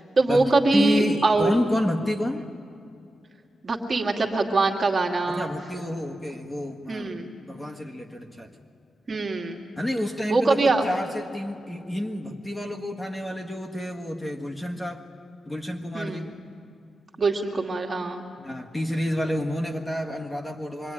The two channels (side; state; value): both; normal; correlation 0.92